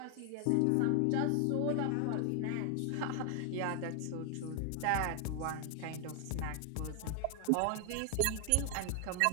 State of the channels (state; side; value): different; both; correlation 0.00